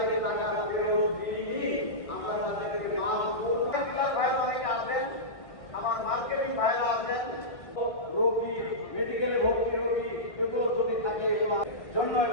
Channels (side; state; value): right; late; 1.6 ms